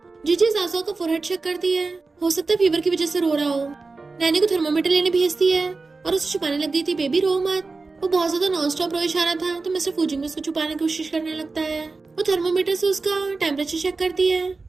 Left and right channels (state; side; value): quieter; left; 3.9 dB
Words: जीजी जाओ का फोरहेड चेक करती है, हो सकता है फीवर की वजह से रो रहा हो। नैनी को थर्मोमीटर लेने भेजती है और उसे छुपाने लग गई थी बेबी रो मत। वो बहुत ज्यादा नॉन स्टॉप रोए जा रहा था तो मिस्टर फुचिंग उसको छुपाने की कोशिश करने लगता है। वो थर्मोमीटर से उसका टेम्परेचर चेक करती है